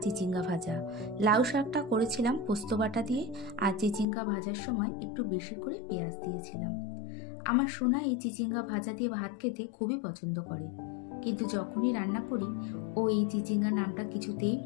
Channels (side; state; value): right; drops out; at 4.0 s